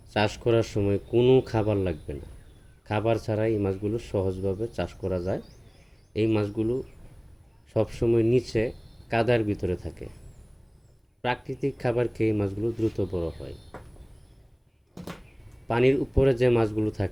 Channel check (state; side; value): identical; both; correlation 1.00